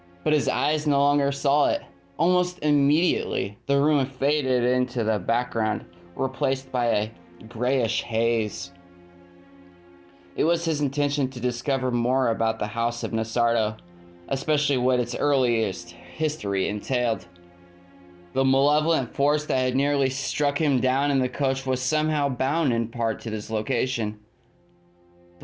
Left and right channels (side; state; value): both; identical; correlation 1.00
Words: but his eyes no longer saw it. Almost immediately, the room faded into the background, replaced by a grayish haze. It was his intention to discover more about the House of Nasardo, especially what its earliest history entailed. The malevolent force that had nearly struck him down in the coach was somehow bound in part to this location.